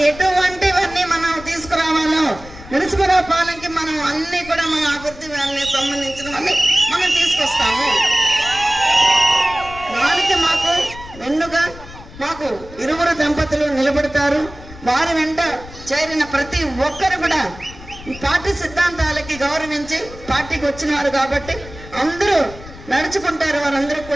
ఎటువంటివన్నీ మనం తీసుకురావాలో నరసింహరావు పాలనకి మనం అన్ని కూడా మన అభివృద్ధి సంబంధించినవన్నీ మనం తీసుకొస్తాము. వారికి మాకు వెన్నుగా మాకు ఇరువురు దంపతులు నిలబడతారు. వారి వెంట చేరిన ప్రతి ఒక్కరు కూడా ఈ పార్టీ సిద్ధాంతాలకి గౌరవించి పార్టీకి వచ్చినారు కాబట్టి అందరూ నడుచుకుంటారు. వారందరూ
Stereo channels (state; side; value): noise; left; rumble, 17 dB below the sound